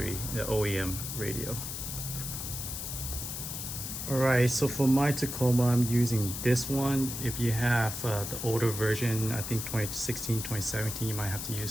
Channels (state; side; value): noise; left; hiss, 6 dB below the sound